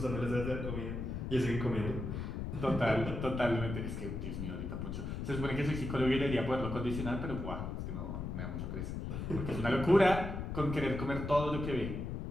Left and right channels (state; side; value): noise; left; rumble, 4 dB below the sound